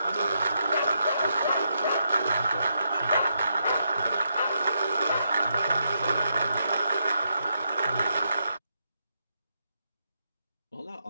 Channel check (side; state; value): both; inverted; correlation -0.81